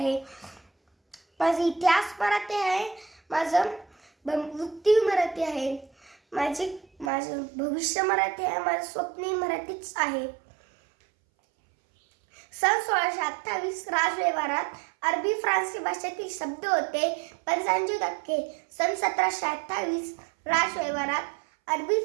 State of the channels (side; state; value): left; drops out; at 7.1 s